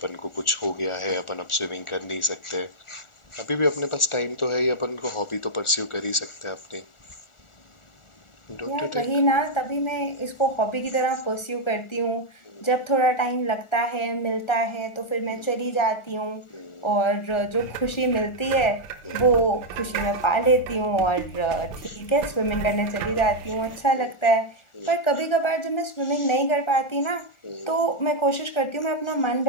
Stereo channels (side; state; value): right; late; 1.4 ms